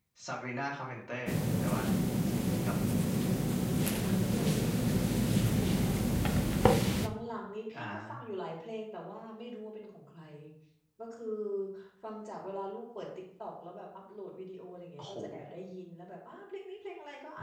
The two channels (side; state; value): both; identical; correlation 1.00